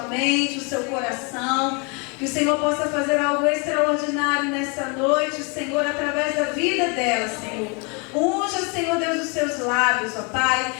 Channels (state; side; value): quieter; right; 32.8 dB